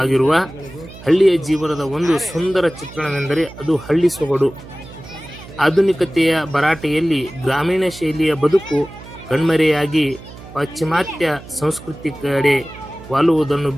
ಹಳ್ಳಿಯ ಜೀವನದ ಒಂದು ಸುಂದರ ಚಿತ್ರಣವೆಂದರೆ ಅದು ಹಳ್ಳಿ ಸೊಗಡು. ಆಧುನಿಕತೆಯ ಭರಾಟೆಯಲ್ಲಿ ಗ್ರಾಮೀಣ ಶೈಲಿಯ ಬದುಕು ಕಣ್ಮರೆಯಾಗಿ ಪಾಶ್ಚಿಮಾತ್ಯ ಸಂಸ್ಕೃತಿ ಕಡೆ ವಾಲುವುದನ್ನು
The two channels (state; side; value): noise; right; hum, 17 dB below the sound